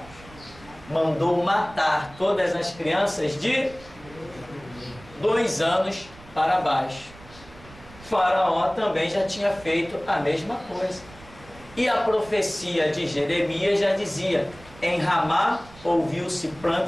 mandou matar todas as crianças de 2 anos para baixo. Faraó também já tinha feito a mesma coisa. E a profecia de Jeremias já dizia, em Ramá ouviu-se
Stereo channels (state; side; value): noise; right; rumble, 21 dB below the sound